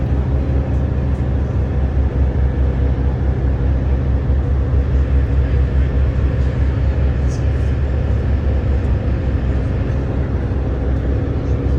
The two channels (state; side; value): identical; both; correlation 1.00